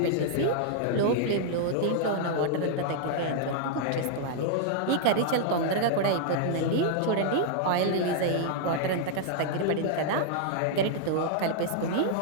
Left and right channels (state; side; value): different; both; correlation -0.01